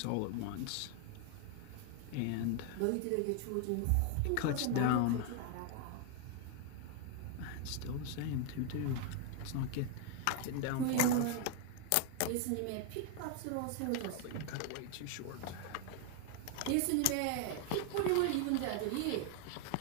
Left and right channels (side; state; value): both; different; correlation 0.00